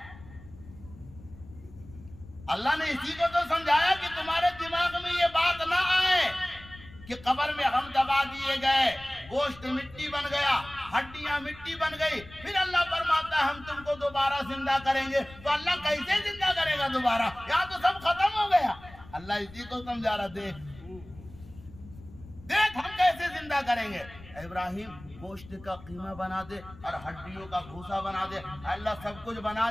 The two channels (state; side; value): noise; left; rumble, 19 dB below the sound